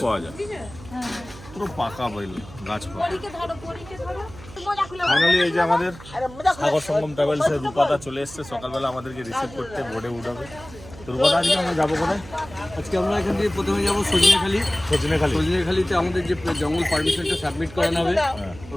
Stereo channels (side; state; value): right; noise; hum, 17 dB below the sound